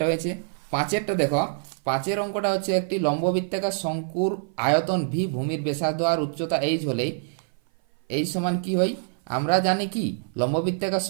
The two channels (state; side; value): silent; left; 57 dB below the other